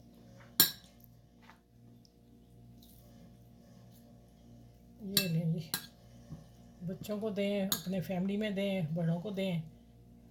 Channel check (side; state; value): both; identical; correlation 1.00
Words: ये लें जी, बच्चों को दें, अपने फैमिली में दें, बड़ों को दें।